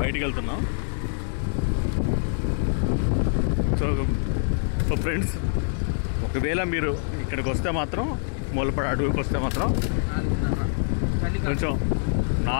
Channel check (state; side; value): silent; right; 62 dB below the other